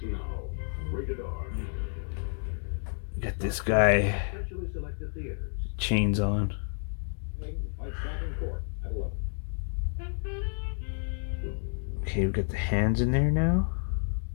Got this guy. Chains on. Okay, we've got the hands in there now.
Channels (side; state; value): right; silent; 58 dB below the other